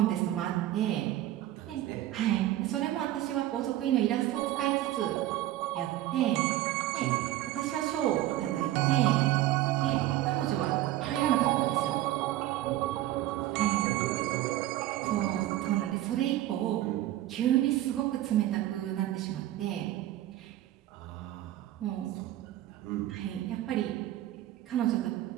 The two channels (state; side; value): quieter; left; 14.4 dB